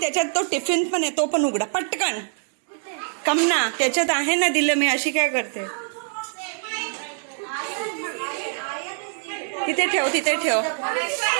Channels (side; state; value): left; silent; 63 dB below the other